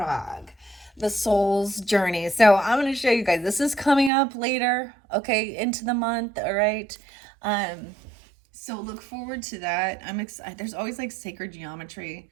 The Soul's Journey. So I'm going to show you guys. This is coming up later, okay, into the month, all right? So look forward to that. I'm excited. There's always like sacred geometry.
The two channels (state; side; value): drops out; left; at 4.1 s